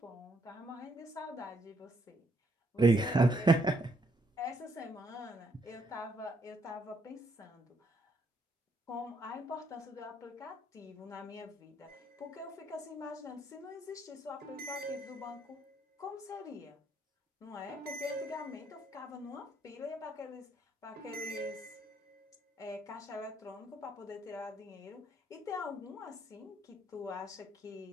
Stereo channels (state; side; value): normal; both; correlation 0.72